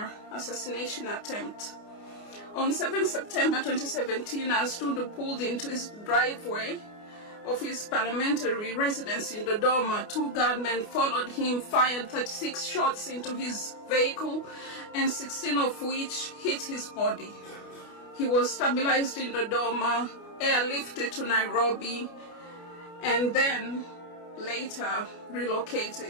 assassination attempt. On 7 September 2017, as Tundu pulled into his driveway of his parliamentary residence in Dodoma, 2 gunmen followed him, fired 36 shots into his vehicle, and 16 of which hit his body. He was stabilized in Dodoma, airlifted to Nairobi, and then later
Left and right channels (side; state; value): right; late; 29 ms